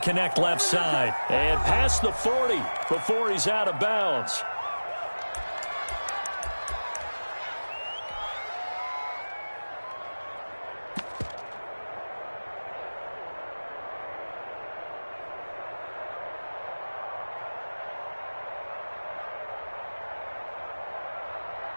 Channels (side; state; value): both; inverted; correlation -1.00